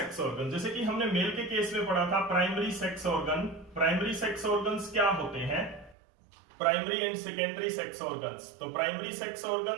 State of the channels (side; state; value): left; drops out; at 6.0 s